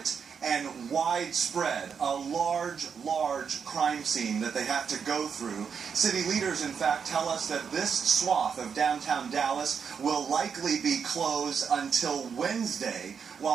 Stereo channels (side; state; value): left; quieter; 6.6 dB